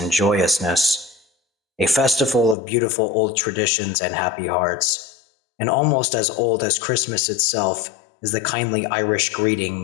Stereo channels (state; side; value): drops out; right; at 2.6 s